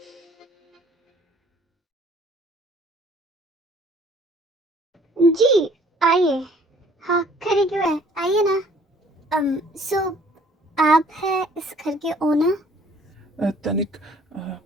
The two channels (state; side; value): normal; both; correlation 0.57